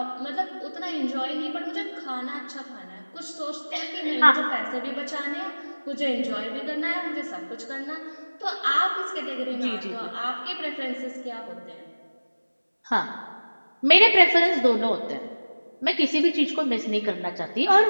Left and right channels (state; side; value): inverted; both; correlation -1.00